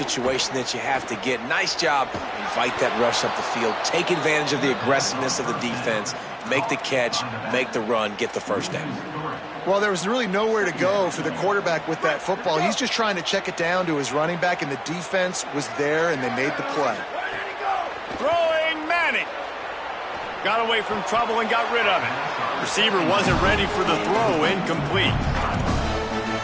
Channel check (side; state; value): both; identical; correlation 1.00